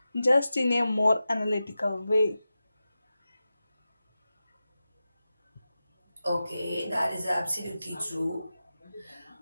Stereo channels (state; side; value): inverted; both; correlation -0.93